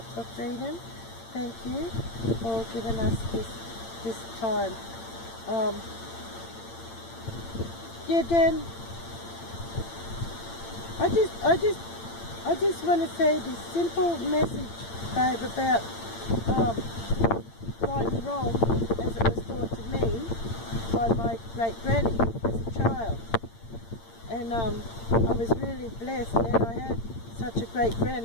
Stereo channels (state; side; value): late; right; 8.8 ms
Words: for Freedom, thank you for giving us this time. Yeah, Dan, I just want to say this simple message, babe, about right and wrong as it was taught to me by my great granny as a child. And I was really blessed that I had such a great